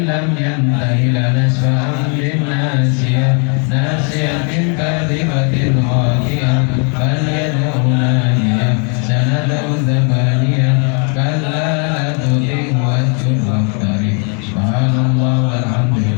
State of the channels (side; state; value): right; quieter; 38.4 dB